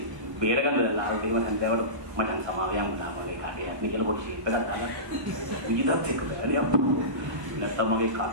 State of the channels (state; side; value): late; left; 1.0 ms